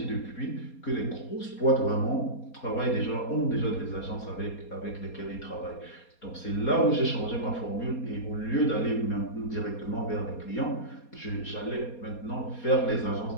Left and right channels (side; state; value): right; late; 4.2 ms